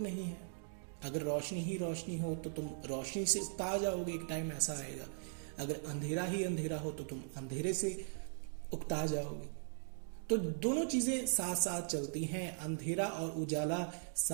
है। अगर रोशनी ही रोशनी हो तो तुम रोशनी से उकता जाओगे, एक टाइम ऐसा आएगा। अगर अंधेरा ही अंधेरा हो तो तुम अंधेरे से उकता जाओगे। तो दोनों चीजें साथ साथ चलती हैं, अंधेरा और उजाला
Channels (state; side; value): silent; left; digital silence